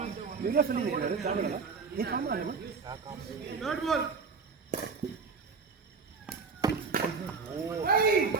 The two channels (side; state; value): left; quieter; 5.0 dB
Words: நீங்க சொன்னீங்க நீ காமரா தேர்ட் பால்.